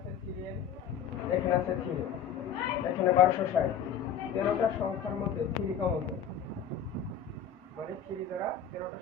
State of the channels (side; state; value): right; quieter; 7.7 dB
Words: 3n, এখানে আছে 3n, এখানে 1260। 13টা সংখ্যার মধ্যে 3 কমন যায়, মানে 3 দ্বারা 13টা